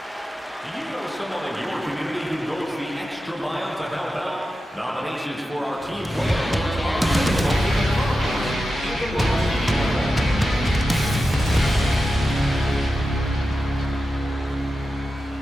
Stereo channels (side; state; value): both; normal; correlation 0.91